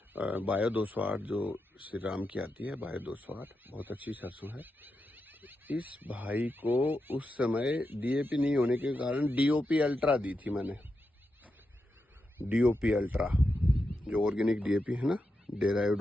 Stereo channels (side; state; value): both; normal; correlation 0.87